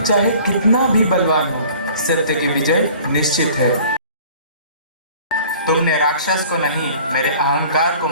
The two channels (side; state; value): both; inverted; correlation -0.49